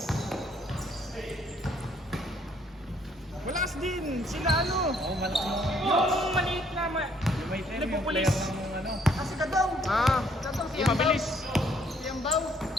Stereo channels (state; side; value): normal; both; correlation 0.65